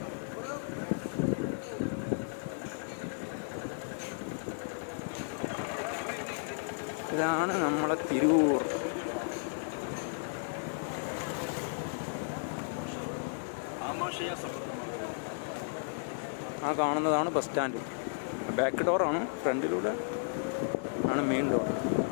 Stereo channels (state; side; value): silent; right; digital silence